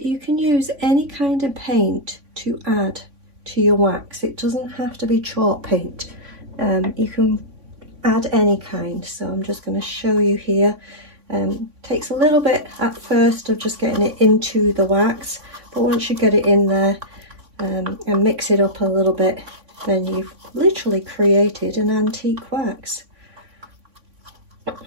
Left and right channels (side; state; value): left; late; 3.5 ms